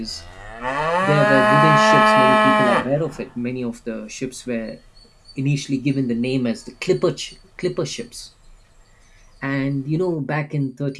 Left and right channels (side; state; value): both; identical; correlation 1.00